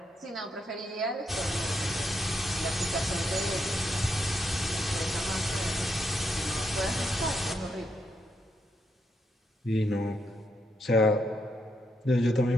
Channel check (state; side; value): normal; both; correlation 0.80